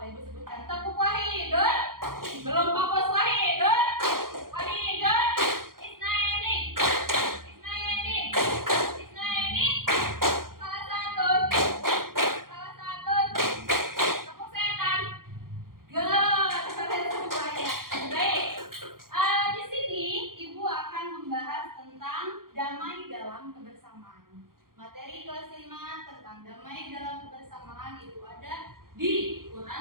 Ibu sebutkan tepuk wahidun? Belum fokus wahidun? Wahidun? Isnaini? Isnaini? Isnaini? Salah satu? Salah satu? Tepuk setan? Good, kalian semuanya. Baik. Di sini Ibu akan membahas tentang damai dalam kebersamaan. Materi kelas 5 tentang damai dalam kebersamaan itu ada di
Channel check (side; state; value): left; late; 0.92 ms